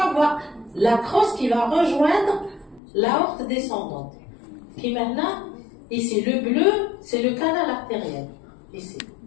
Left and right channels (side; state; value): right; drops out; at 2.8 s